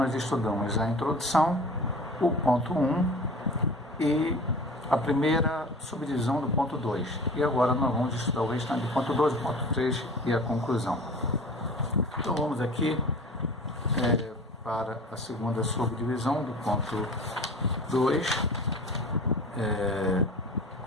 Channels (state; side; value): normal; both; correlation 0.40